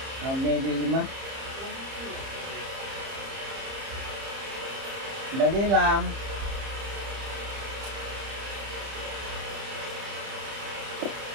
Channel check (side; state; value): left; late; 30 ms